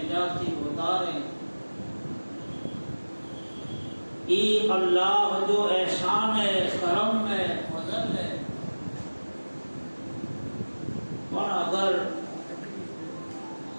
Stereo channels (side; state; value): both; inverted; correlation -1.00